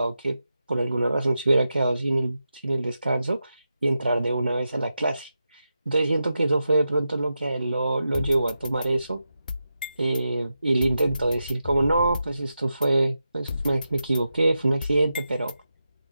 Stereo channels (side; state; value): both; inverted; correlation -0.89